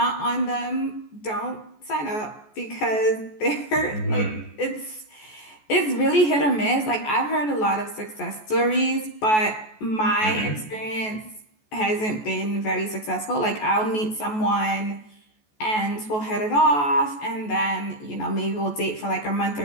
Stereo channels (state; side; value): late; right; 14 ms